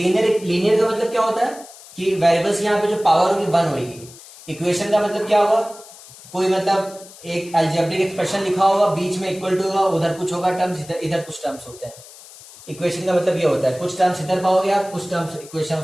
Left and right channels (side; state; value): left; noise; hiss, 19 dB below the sound